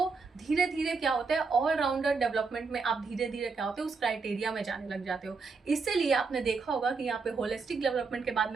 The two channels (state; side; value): quieter; left; 4.6 dB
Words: धीरे धीरे क्या होता है, ऑलराउंडर डेवलपमेंट में आप धीरे धीरे क्या होते हैं, उस क्राइटेरिया में जाने लग जाते हो। इसीलिए आपने देखा होगा कि यहाँ पे होलिस्टिक डेवलपमेंट के बाद